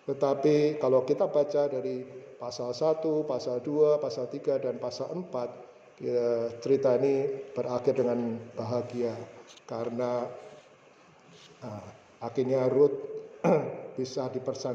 Tetapi kalau kita baca dari pasal 1, pasal 2, pasal 3, dan pasal 4, ya, cerita ini berakhir dengan bahagia. Karena akhirnya Ruth bisa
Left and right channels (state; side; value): identical; both; correlation 1.00